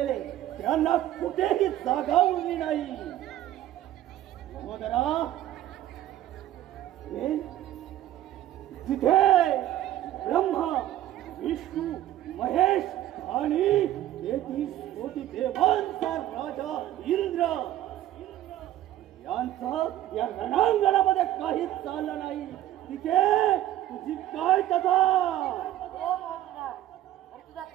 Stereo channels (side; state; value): left; quieter; 13.3 dB